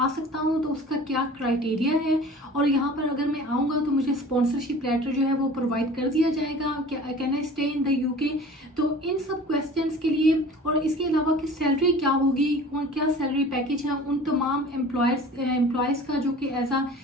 सकता हूँ तो उसका क्या क्राइटेरिया है, और यहाँ पर अगर मैं आऊँगा तो मुझे स्पॉन्सरशिप लेटर जो है वो प्रोवाइड कर दिया जाएगा? क्या can I stay in the UK? तो इन सब क्वेश्चंस के लिए, और इसके अलावा कि सैलरी क्या होगी और क्या सैलरी पैकेज है उन तमाम एम्प्लॉयज़ का जो कि एज अ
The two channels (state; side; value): normal; both; correlation 0.43